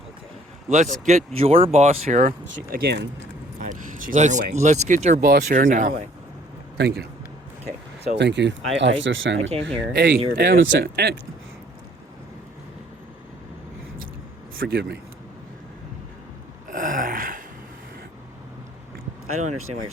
Okay. Let's get your boss here. She's on her way. Let's get your boss here She's now. on her way. Thank you. Okay. So Thank you, I Officer Salmon. I came here. Hey, and you were very upset. Forgive me. I don't understand why you're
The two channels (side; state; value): both; normal; correlation 0.59